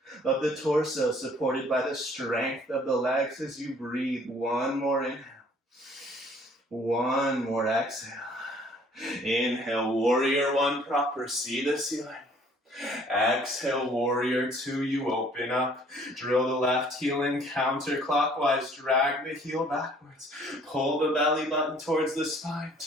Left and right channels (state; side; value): normal; both; correlation 0.57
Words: of the torso, supported by the strength of the legs as you breathe. One more inhale. One more exhale. Inhale, warrior one proper, see the ceiling. Exhale, warrior two, you open up. Drill the left heel in counterclockwise, drag the heel backwards. Pull the belly button towards the spine.